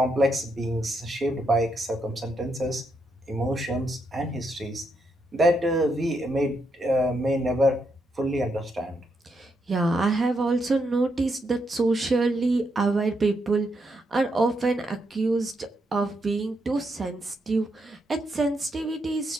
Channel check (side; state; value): both; normal; correlation 0.80